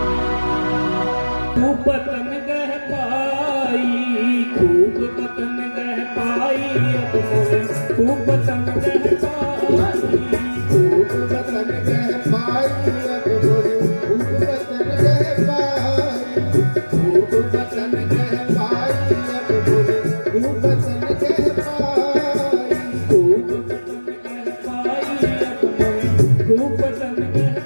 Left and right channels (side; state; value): both; inverted; correlation -1.00